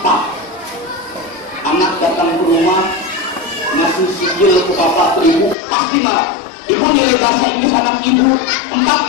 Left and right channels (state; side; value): drops out; right; at 5.6 s